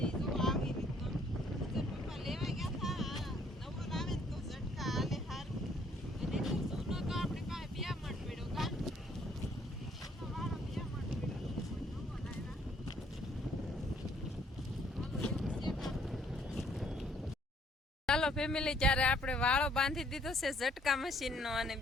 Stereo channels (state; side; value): normal; both; correlation 0.64